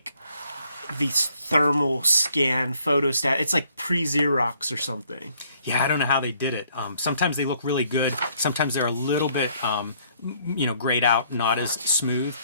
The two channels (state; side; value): inverted; both; correlation -0.65